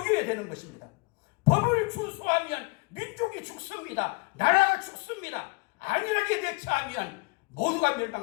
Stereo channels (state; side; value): quieter; right; 27.6 dB